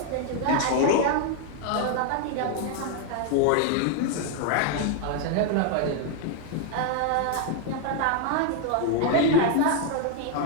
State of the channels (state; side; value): different; both; correlation 0.00